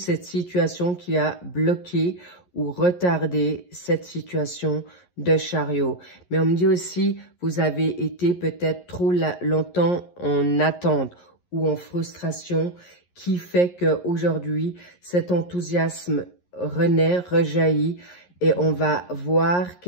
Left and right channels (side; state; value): right; late; 11 ms